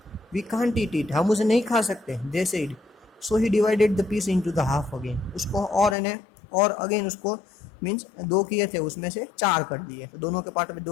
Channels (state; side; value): drops out; right; at 6.0 s